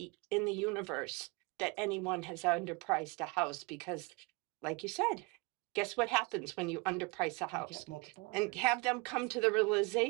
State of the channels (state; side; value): quieter; left; 28.3 dB